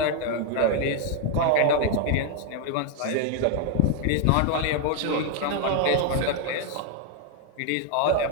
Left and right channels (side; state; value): both; different; correlation 0.01